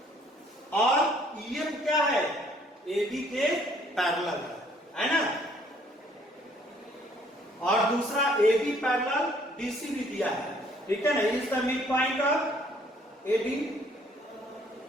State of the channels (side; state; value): both; normal; correlation 0.62